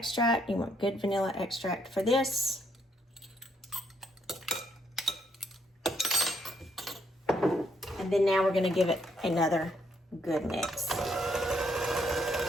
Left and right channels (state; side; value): normal; both; correlation 0.72